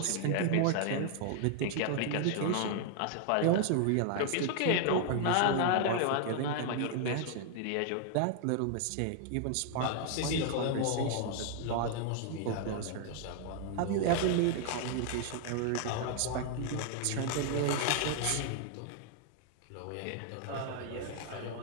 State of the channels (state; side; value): different; both; correlation 0.00